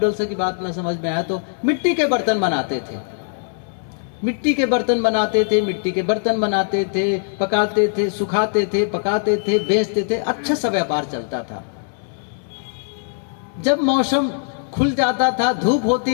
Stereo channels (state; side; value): silent; right; 65 dB below the other